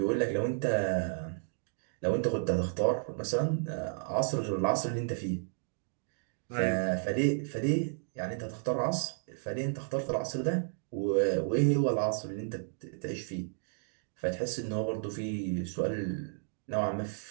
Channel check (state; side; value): silent; left; digital silence